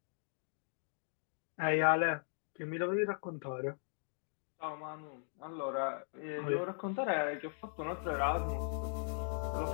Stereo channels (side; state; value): right; silent; digital silence